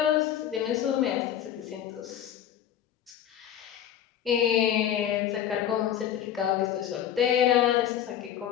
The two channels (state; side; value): quieter; right; 10.2 dB